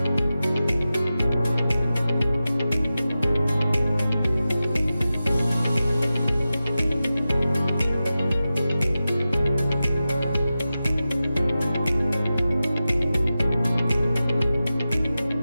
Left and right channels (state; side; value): inverted; both; correlation -0.93